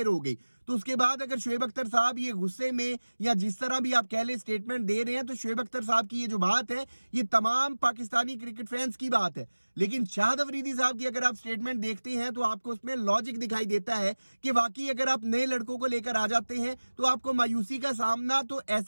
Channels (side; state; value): both; inverted; correlation -1.00